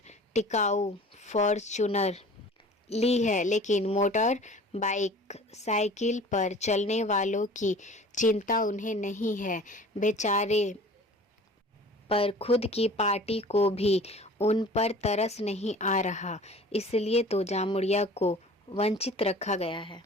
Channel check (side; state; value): both; normal; correlation 0.44